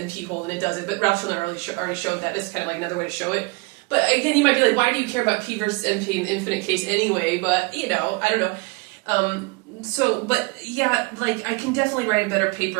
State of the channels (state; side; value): quieter; left; 27.7 dB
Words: hold, and it doesn't. But Ralph Schiller already showed that. This is kind of like another way to show it. But again, you might be like, why do you care about P versus NP in the infinite case anyway? But, I don't know. But yeah, like, I can definitely write a better